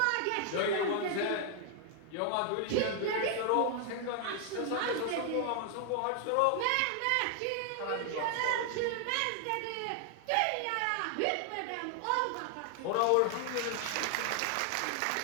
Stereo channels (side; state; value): both; different; correlation 0.00